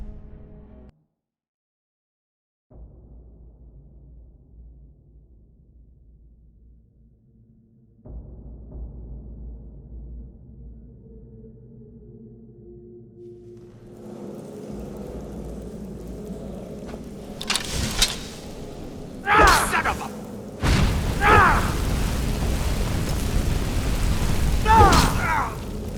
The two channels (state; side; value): identical; both; correlation 1.00